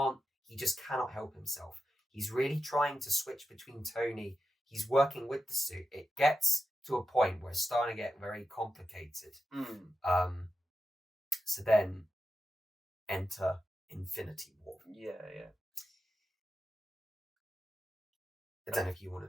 just cannot help himself. He's really trying to switch between Tony. He's working with the suit. It gets to a point where it's starting to get very complicated. So then enter Infinity War. I don't know if you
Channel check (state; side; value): normal; both; correlation 0.90